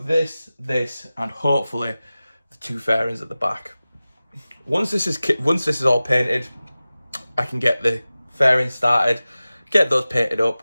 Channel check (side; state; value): both; inverted; correlation -0.96